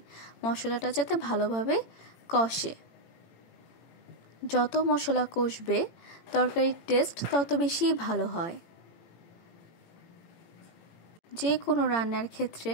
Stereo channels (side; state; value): right; late; 18 ms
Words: মশলাটা যাতে ভালোভাবে কষে। যত মশলা কষবে তরকারির টেস্ট তত বেশি ভালো হয়। যে কোনো রান্নার ক্ষেত্রে